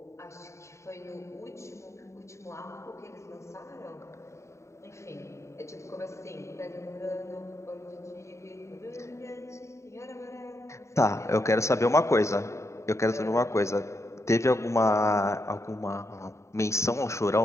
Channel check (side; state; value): right; late; 0.14 ms